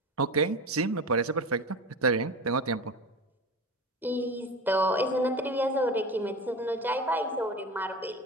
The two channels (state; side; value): normal; both; correlation 0.29